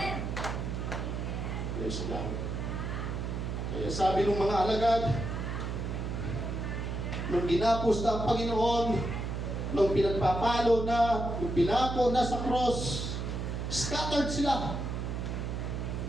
Praise God. Kaya sabi ng mga alagad, nung ginapos na ang Panginoon, nung pinagpapalo na, nung pinako na sa cross, scattered sila.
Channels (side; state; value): right; noise; hum, 3 dB below the sound